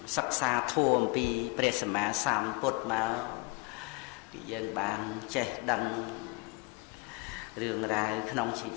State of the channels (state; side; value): quieter; right; 28.9 dB